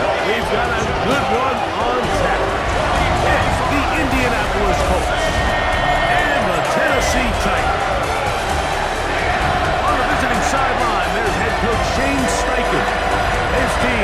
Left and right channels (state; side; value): identical; both; correlation 1.00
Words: we've got a good one on tap. It's the Indianapolis Colts and the Tennessee Titans. On the visiting sideline, there's head coach Shane Steichen. His